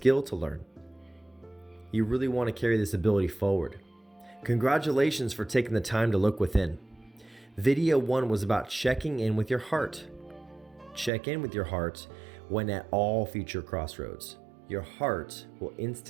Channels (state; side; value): drops out; left; at 11.1 s